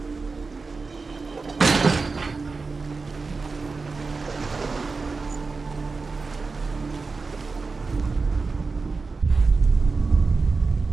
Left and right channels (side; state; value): left; quieter; 4.2 dB